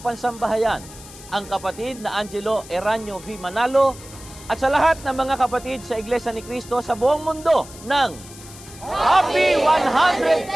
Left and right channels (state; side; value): noise; left; hiss, 18 dB below the sound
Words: pansambahayan, ang kapatid na Angelo Eranio V. Manalo, at sa lahat ng mga kapatid sa Iglesia ni Cristo sa buong mundo ng Happy